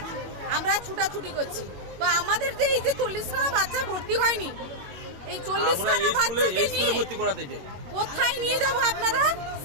আমরা ছুটাছুটি করছি। তো আমাদের যে এই যে 40খানা বাচ্চা ভর্তি হয়নি, এই 40খানা বাচ্চাকে নিয়ে কোথায় নিয়ে যাব আপনারা,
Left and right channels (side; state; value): left; late; 21 ms